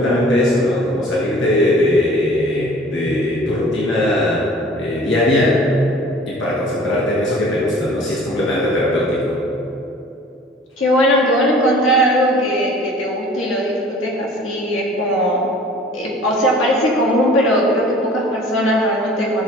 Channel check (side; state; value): both; normal; correlation 0.48